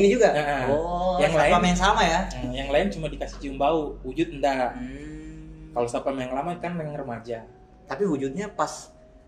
juga. Yang lain yang sama ya. Yang lain cuma dikasih cium bau, wujud enggak. Kalau satpam yang lama kan yang remaja. Tapi wujudnya pas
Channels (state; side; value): identical; both; correlation 1.00